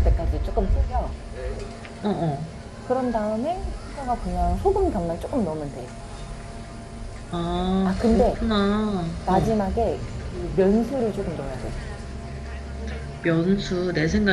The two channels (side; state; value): both; identical; correlation 1.00